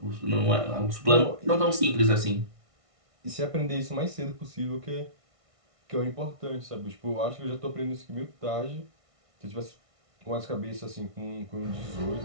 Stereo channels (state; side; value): late; left; 1.6 ms